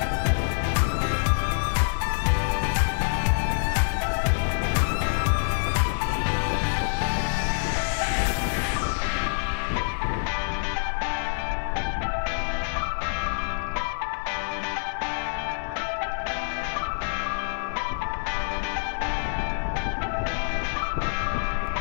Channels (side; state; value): right; silent; digital silence